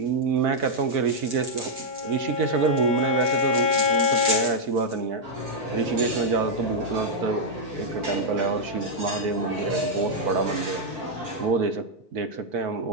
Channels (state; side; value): late; left; 4.6 ms